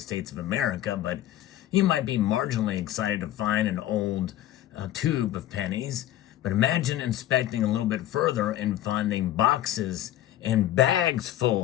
of America, but you might be marginally excited to find an old tube of pennies. But imagine inspecting a little bit further and finding boxes and bags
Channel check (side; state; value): right; quieter; 13.2 dB